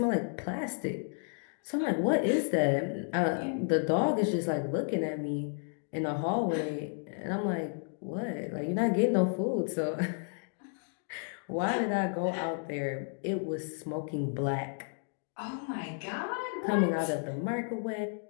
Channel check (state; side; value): silent; right; 56 dB below the other